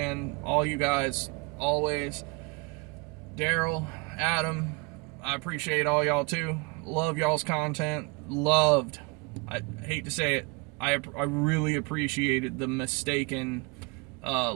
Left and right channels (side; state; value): left; quieter; 29.3 dB